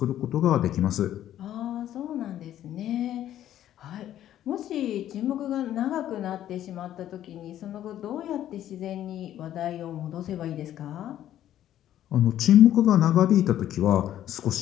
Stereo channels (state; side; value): quieter; right; 11.9 dB